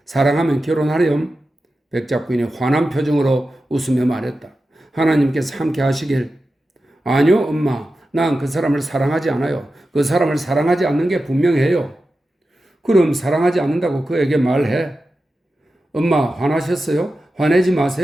사랑하면 결혼하렴. 백작 부인이 환한 표정으로 웃으며 말했다. 하나님께서 함께 하시길. 아니요, 엄마. 난 그 사람을 사랑하지 않아요. 그 사람을 사랑하지 않는 게 분명해요. 그럼 사랑하지 않는다고 그에게 말해. 엄마, 화나셨어요? 화내지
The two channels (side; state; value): both; normal; correlation 0.92